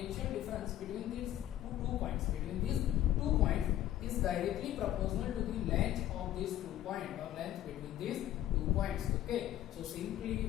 difference between these two points is directly proportional to the length of these 2 points or length between these 2 points. Okay, so simply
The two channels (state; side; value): quieter; right; 12.8 dB